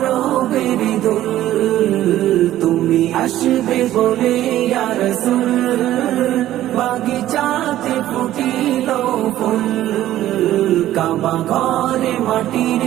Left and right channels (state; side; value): quieter; left; 13.6 dB